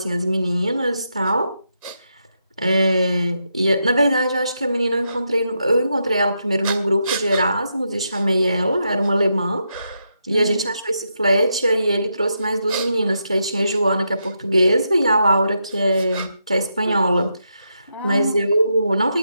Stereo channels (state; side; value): inverted; both; correlation -0.83